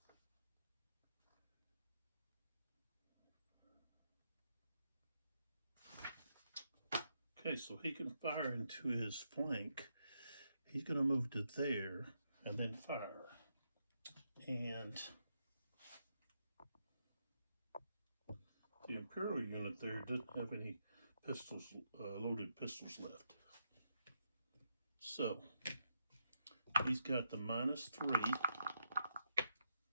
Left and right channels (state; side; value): inverted; both; correlation -0.81